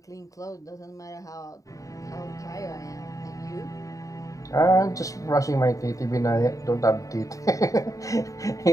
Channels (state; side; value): late; right; 0.16 ms